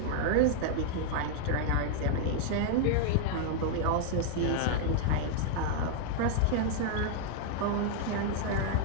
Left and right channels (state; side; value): different; both; correlation -0.01